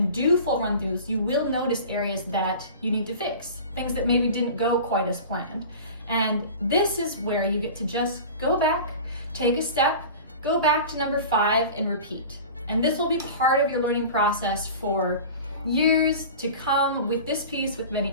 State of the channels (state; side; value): inverted; both; correlation -0.36